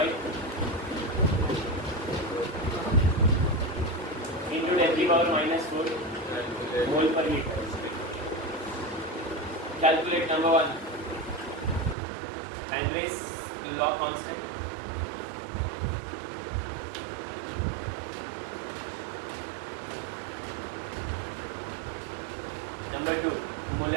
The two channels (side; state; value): left; drops out; at 12.0 s